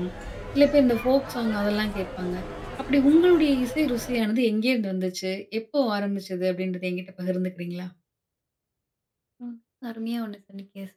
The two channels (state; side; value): identical; both; correlation 1.00